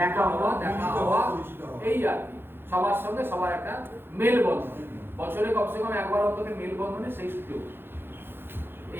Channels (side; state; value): left; late; 0.10 ms